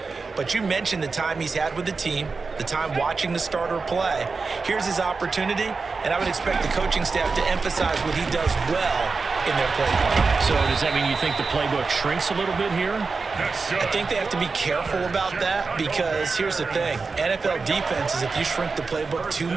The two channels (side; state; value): left; quieter; 4.4 dB